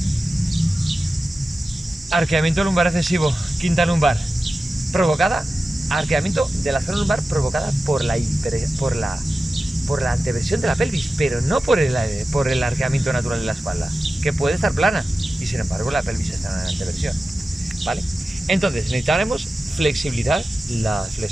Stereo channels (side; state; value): both; normal; correlation 0.94